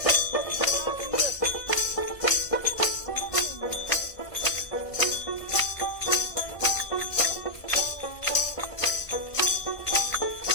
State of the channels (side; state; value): right; late; 1.5 ms